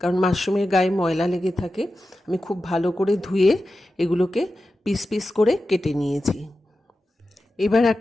মাশরুমের গায়ে ময়লা লেগে থাকে। আমি খুব ভালো করে ধুয়ে এগুলোকে পিস পিস করে কেটে নিয়েছি। এবার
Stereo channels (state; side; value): normal; both; correlation 0.92